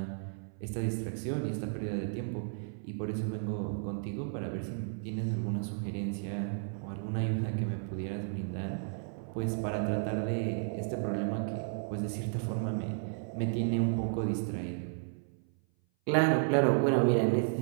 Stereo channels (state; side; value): silent; left; 56 dB below the other